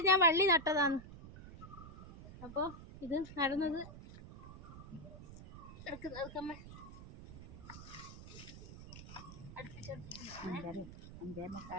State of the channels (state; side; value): noise; right; rumble, 14 dB below the sound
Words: ഞാൻ വള്ളി നട്ടതാണ്. അപ്പോൾ ഇത് നടന്നത്